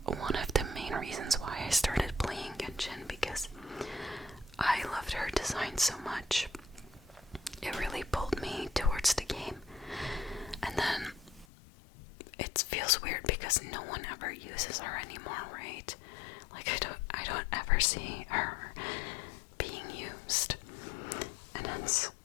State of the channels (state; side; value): drops out; right; at 11.5 s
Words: one of the main reasons why I started playing Genshin, because I loved her design so much. It really pulled me towards the game. And then it feels weird because no one ever uses her anymore, right? Like, I don't ever see her being used, and that's